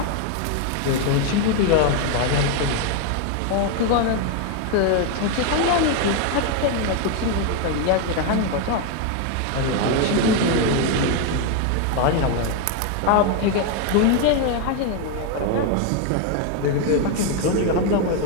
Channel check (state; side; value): different; both; correlation 0.01